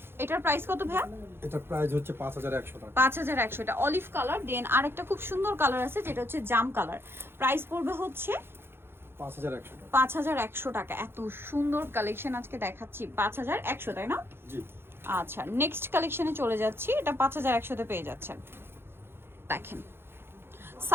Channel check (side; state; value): left; late; 0.11 ms